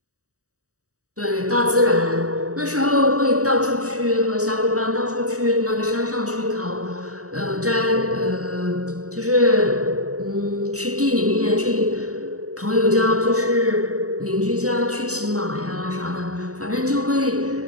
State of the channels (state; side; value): late; left; 0.66 ms